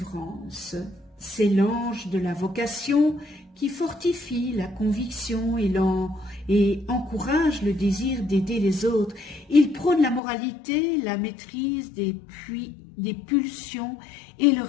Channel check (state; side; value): drops out; right; at 10.2 s